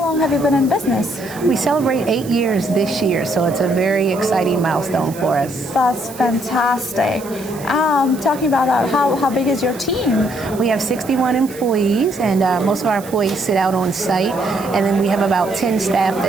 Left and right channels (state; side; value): noise; right; hiss, 18 dB below the sound